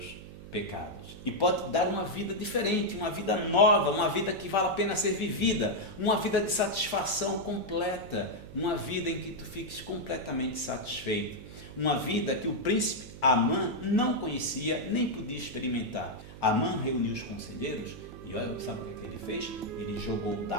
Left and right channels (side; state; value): right; noise; hum, 15 dB below the sound